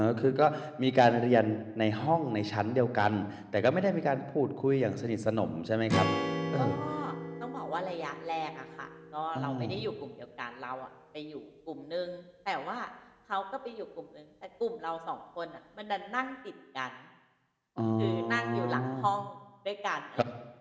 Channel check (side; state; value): both; identical; correlation 1.00